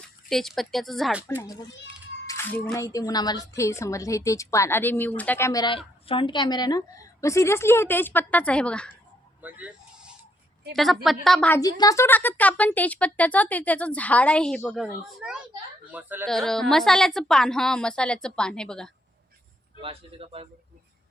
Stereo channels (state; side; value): normal; both; correlation 0.72